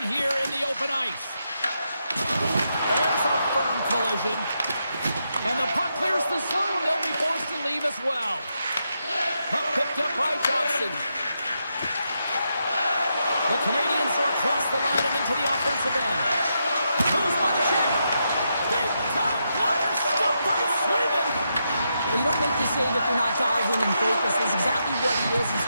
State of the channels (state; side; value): inverted; both; correlation -0.83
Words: here in the open ice. There's a firm collision. And the puck clears the zone. They'll be forced to leave as well. Puck picked up by Johnson. The Canadiens are across the line and into the offensive end. Moves by the check. Big time blocker stopped by Sweden. Well, you don't make the save if you're not dialed in and focused. That's exactly what he is. He's